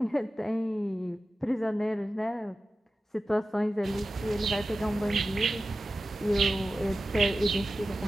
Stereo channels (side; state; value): both; normal; correlation 0.94